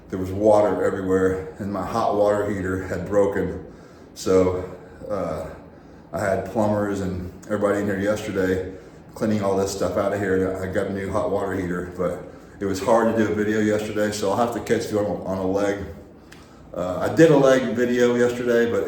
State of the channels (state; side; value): identical; both; correlation 1.00